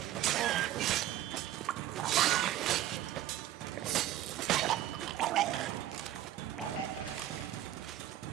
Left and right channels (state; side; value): quieter; left; 13.1 dB